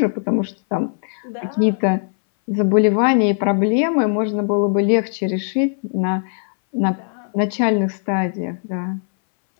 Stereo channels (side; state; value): right; silent; 61 dB below the other